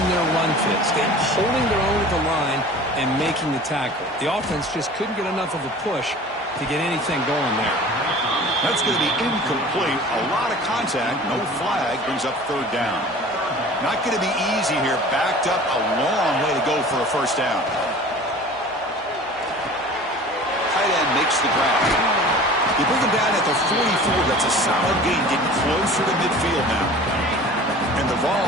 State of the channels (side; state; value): both; normal; correlation 0.42